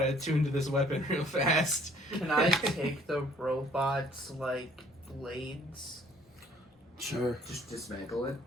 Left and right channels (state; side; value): normal; both; correlation 0.59